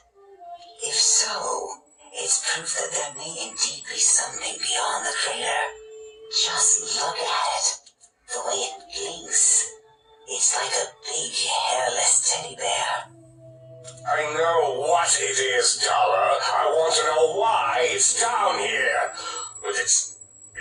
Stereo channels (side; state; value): both; identical; correlation 1.00